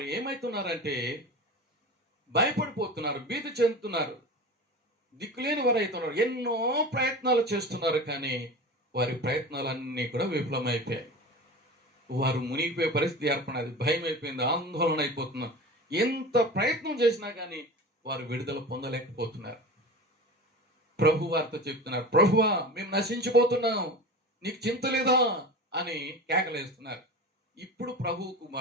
ఏమైతున్నారంటే భయపడిపోతున్నారు, భీతి చెందుతున్నారు, దిక్కులేని వారు అవుతున్నారు. ఎన్నో ప్రయత్నాలు చేస్తున్నారు, కానీ వారి ప్రయత్నాలన్నీ కూడా విఫలమైపోయాయి. వారు మునిగిపోయే పరిస్థితి ఏర్పడినది. భయం అయిపోయింది, ఆందోళన అయిపోతున్నారు. ఎంత ప్రయత్నం చేసినా కానీ వారు విడుదల పొందలేకపోతున్నారు. ప్రభు వారితో చెప్తున్నారు, ప్రభువా మేము నశించిపోతున్నాం, నీకు చింత లేదా అని కేకలేస్తున్నారు. ఇప్పుడు ప్రభువుకు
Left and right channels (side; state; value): both; normal; correlation 0.32